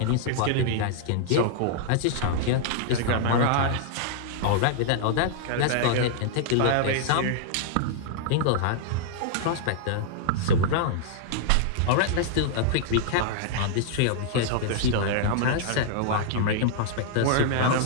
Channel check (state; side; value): different; both; correlation -0.01